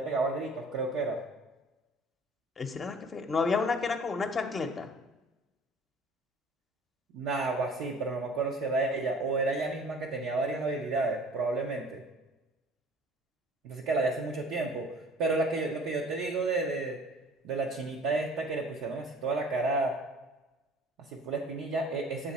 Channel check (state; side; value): normal; both; correlation 0.48